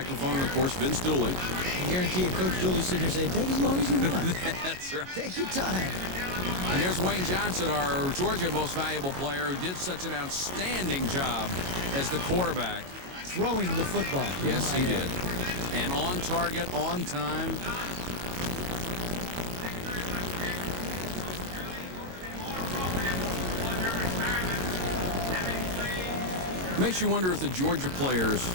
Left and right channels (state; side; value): late; left; 22 ms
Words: and of course Vince Dooley. I guarantee you, Coach Dooley sitting here saying, take as long as you want. That's right. Take your time. And there's Wayne Johnson, our Georgia most valuable player, who did such an outstanding job as the quarterback. Throwing the football. Yes, he did. And on target, on time. Makes you wonder if the Georgia players